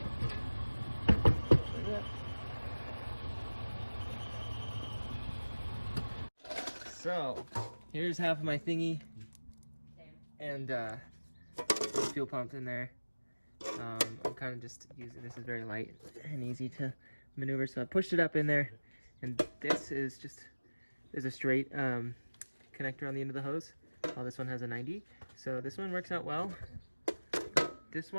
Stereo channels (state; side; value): inverted; both; correlation -1.00